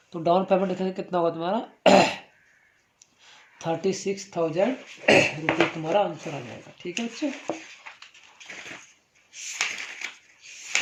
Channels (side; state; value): both; identical; correlation 1.00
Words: तो डाउन पेमेंट लिखेंगे कितना होगा तुम्हारा 36,000 रुपये तुम्हारा आंसर आ जाएगा, ठीक है बच्चे।